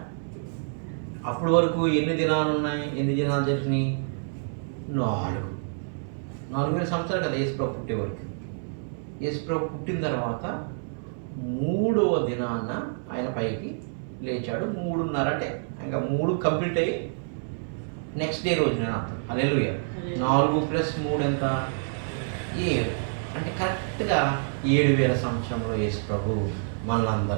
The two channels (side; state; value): left; silent; 60 dB below the other